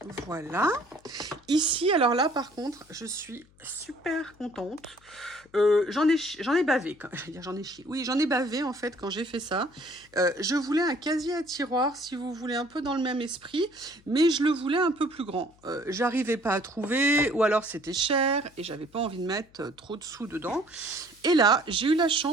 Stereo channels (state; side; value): noise; left; hum, 30 dB below the sound